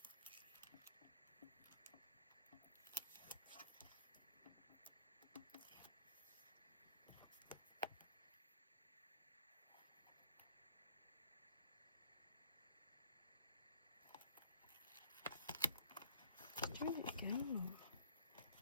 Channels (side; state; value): both; inverted; correlation -0.54